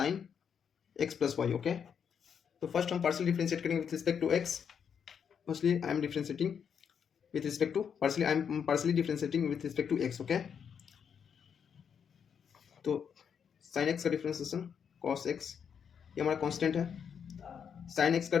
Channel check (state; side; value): quieter; right; 7.4 dB